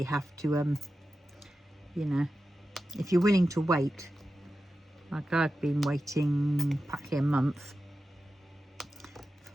have to you know, if you're willing to wait, like I've been waiting practically a month for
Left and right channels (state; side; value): normal; both; correlation 0.92